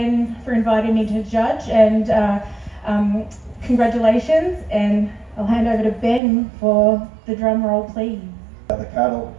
for inviting me to judge, and congratulations, and I'll hand over to Ben for the drum roll, please. The cattle,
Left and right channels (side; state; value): left; drops out; at 6.2 s